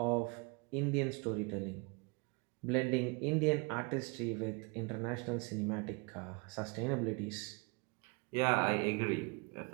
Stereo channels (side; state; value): left; quieter; 30.2 dB